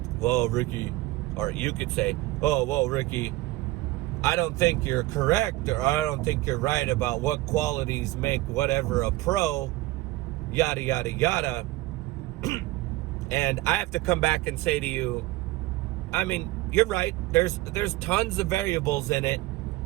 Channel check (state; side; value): quieter; left; 18.6 dB